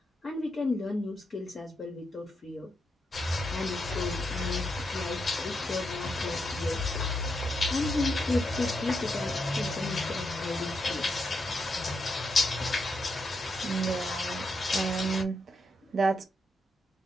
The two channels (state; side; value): normal; both; correlation 0.82